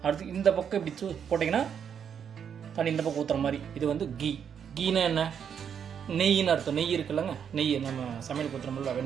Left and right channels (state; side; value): quieter; left; 7.8 dB